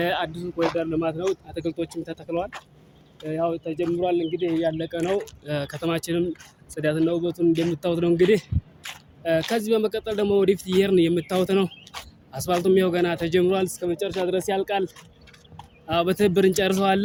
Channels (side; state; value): both; identical; correlation 1.00